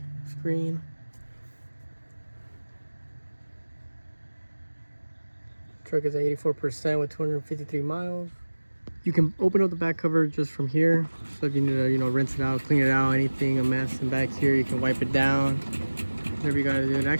screen. Truck is at 84% with 253 miles. You can open up the back cover just from here. So if you need to, you know, rinse it out, clean it out, anything a mess in back here, you can wipe it down. Whatever you gotta do. It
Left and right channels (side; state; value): both; inverted; correlation -1.00